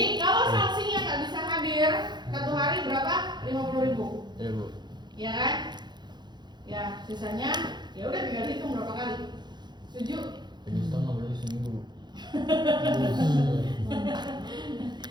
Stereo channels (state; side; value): late; left; 0.21 ms